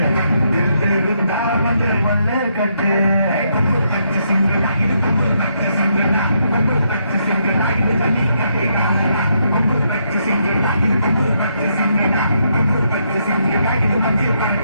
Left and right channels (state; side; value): inverted; both; correlation -0.76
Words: வந்து கொள்ளை கட்டு கொம்பு பச்சை சிங்கடா இது கொம்பு பச்சை சிங்கடா கொம்பு பச்சை சிங்கடா இது தண்ணி கட்டிடா கொம்பு பச்சை சிங்கடா இது கொம்பு பச்சை சிங்கடா கொம்பு பச்சை சிங்கடா இது மஞ்சள்